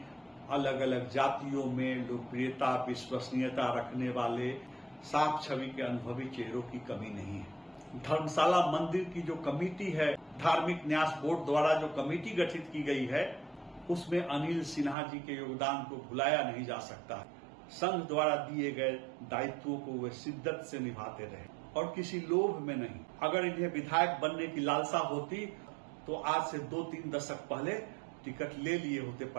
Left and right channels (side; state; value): left; drops out; at 15.0 s